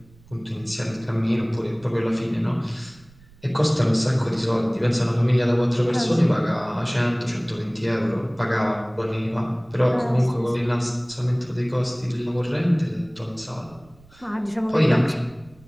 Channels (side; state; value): right; noise; rumble, 26 dB below the sound